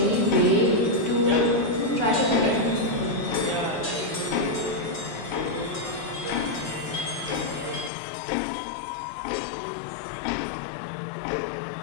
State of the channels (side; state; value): right; drops out; at 7.9 s